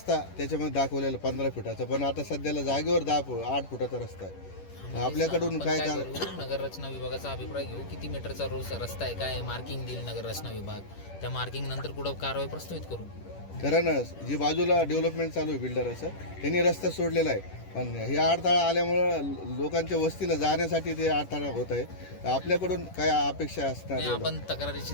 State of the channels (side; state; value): right; late; 10 ms